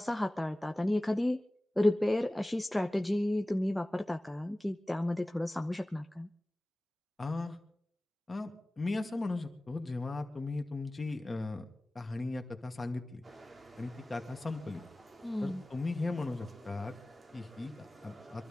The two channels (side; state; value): both; normal; correlation 0.98